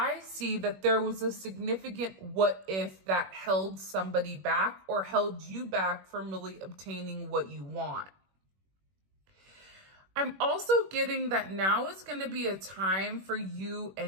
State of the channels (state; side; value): late; left; 21 ms